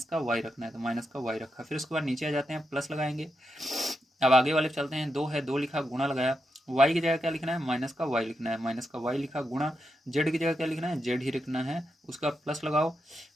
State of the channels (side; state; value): both; normal; correlation 0.85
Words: का वाई रखना है तो माइनस का वाई रखा। फिर उसके बाद नीचे आ जाते हैं, प्लस लगाएंगे। अब आगे वाले चलते हैं, 2 है, 2 लिखा, गुणा लगाया, वाई की जगह क्या लिखना है, माइनस का वाई लिखना है, माइनस का वाई लिखा, गुणा जेड की जगह क्या लिखना है, जेड ही लिखना है, उसका प्लस लगाओ,